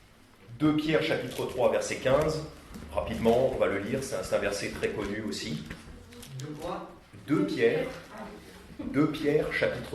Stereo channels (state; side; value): identical; both; correlation 1.00